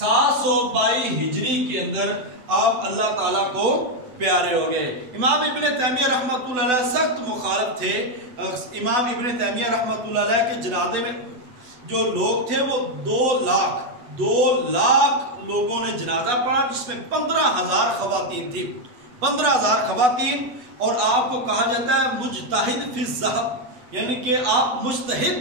ہجری کے اندر آپ اللہ تعالیٰ کو پیارے ہو گئے. امام ابن تیمیہ رحمۃ اللہ علیہ سخت مخالف تھے. امام ابن تیمیہ رحمۃ اللہ علیہ کے جنازے میں جو لوگ تھے وہ 2 لاکھ لوگوں نے جنازہ پڑھا, جس میں 15,000 خواتین تھی. 15,000 خواتین. اور آپ کو کہا جاتا ہے مجتہد فی الذہب, یعنی کہ آپ مجتہد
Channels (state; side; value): late; left; 8.0 ms